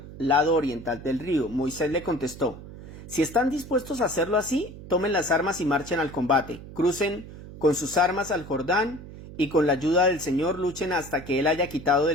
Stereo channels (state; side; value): noise; right; hum, 15 dB below the sound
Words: lado oriental del río. Moisés le contestó: si están dispuestos a hacerlo así, tomen las armas y marchen al combate. Crucen con sus armas al Jordán y con la ayuda del Señor luchen hasta que Él haya quitado